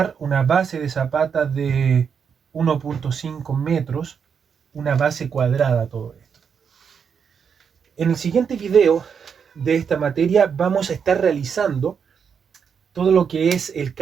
una base de zapata de 1.5 metros, una base cuadrada todo esto. En el siguiente video de esta materia vamos a estar realizando todo lo que es el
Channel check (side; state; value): left; quieter; 6.8 dB